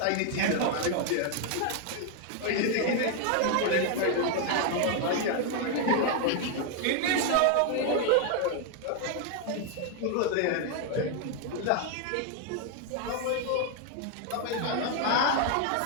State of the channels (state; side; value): different; both; correlation 0.00